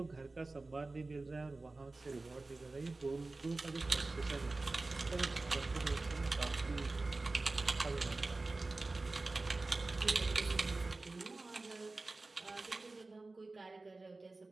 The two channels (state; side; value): quieter; left; 3.3 dB